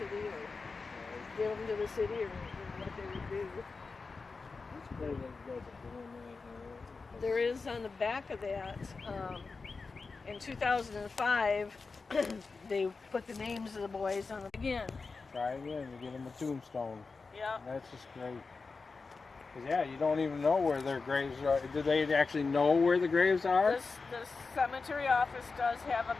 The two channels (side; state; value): right; quieter; 4.3 dB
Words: or give them to the city, or what they would do. It's great that you guys are doing that. There is on the back of that, in 2005, they put the names of the boys on the again. Try again to get them a tombstone. Yeah. That's just great. 'Cause, yeah, you don't even know where their graves are. Do they actually know where the graves are? The cemetery office does have a